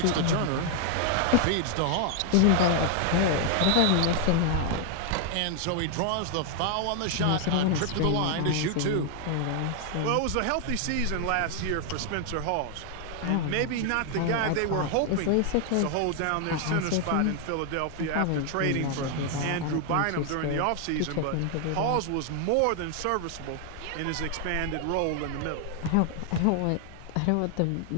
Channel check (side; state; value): both; different; correlation 0.00